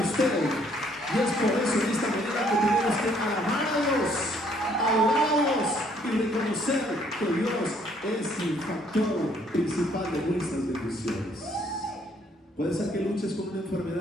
usted. Y es por eso en esta manera que tenemos que alabar a Dios, adorarlos y reconocer que Dios es el factor principal de nuestras bendiciones. Puede ser que luches con una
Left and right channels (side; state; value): both; normal; correlation 0.65